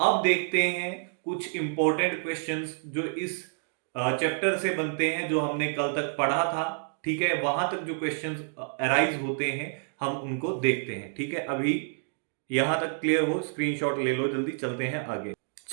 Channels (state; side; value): silent; left; digital silence